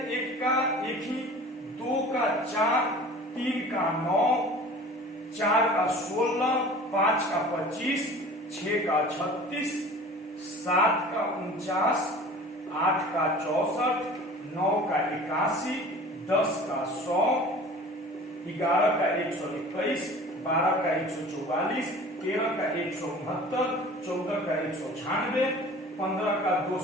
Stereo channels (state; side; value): normal; both; correlation 0.43